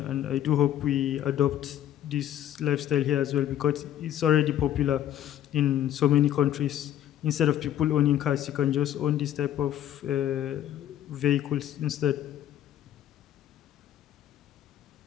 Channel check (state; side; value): quieter; right; 11.4 dB